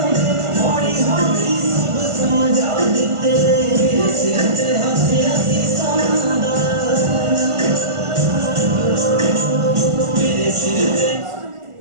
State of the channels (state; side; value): late; left; 1.5 ms